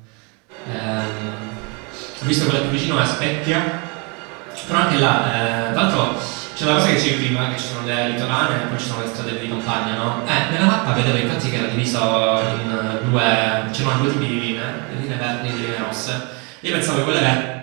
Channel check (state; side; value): quieter; left; 31.6 dB